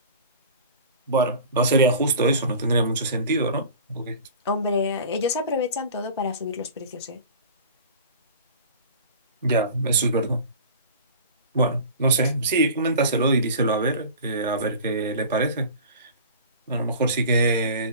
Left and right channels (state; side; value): inverted; both; correlation -0.39